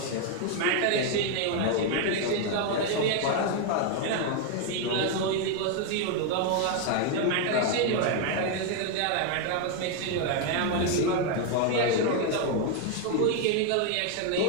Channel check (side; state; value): both; different; correlation 0.01